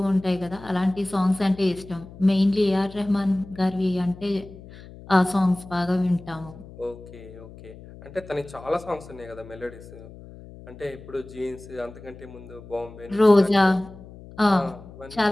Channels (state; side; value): noise; left; hum, 18 dB below the sound